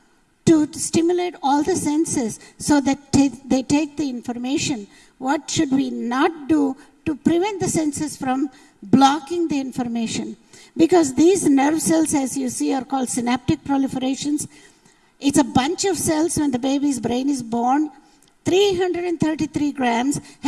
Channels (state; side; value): identical; both; correlation 1.00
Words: to stimulate all the senses so that they take the information. What should we not do to prevent the senses from blocking the information? Because these nerve cells, as you see, are called synaptic proliferations. It's a bunch of cells when the baby's brain is born. 333 grams